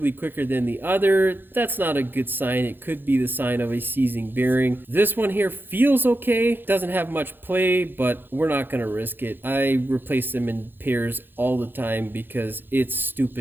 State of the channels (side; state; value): left; late; 0.098 ms